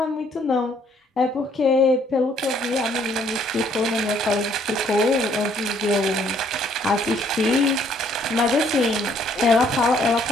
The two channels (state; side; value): normal; both; correlation 0.64